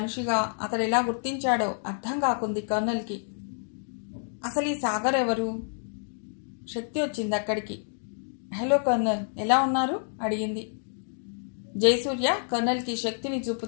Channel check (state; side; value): silent; right; digital silence